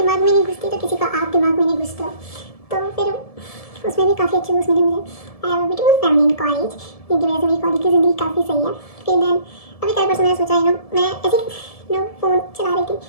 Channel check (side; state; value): right; late; 1.7 ms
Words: में नहीं घुसती तो किसी का आप दिमाग में नहीं घुसता। तो फिर उसमें भी काफ़ी अच्छे दोस्त मिले मुझे। I have a beautiful family in college, जिनकी वजह से मेरी कॉलेज की ज़िंदगी काफ़ी सही है। फिर देन अभी कल परसों मैंने सोचा मैं ऐसे फ़ोन चला रही थी,